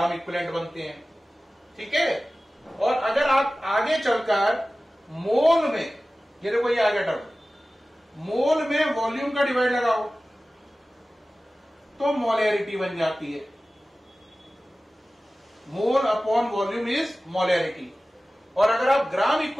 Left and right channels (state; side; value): normal; both; correlation 0.96